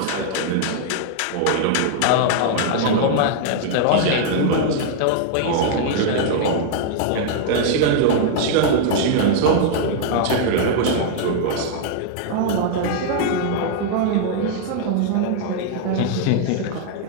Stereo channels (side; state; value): both; different; correlation -0.01